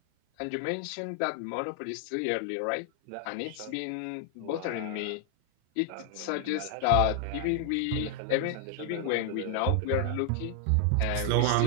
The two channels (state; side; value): different; both; correlation 0.00